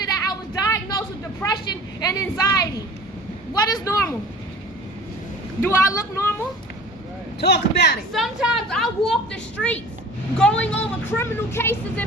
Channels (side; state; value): both; normal; correlation 0.43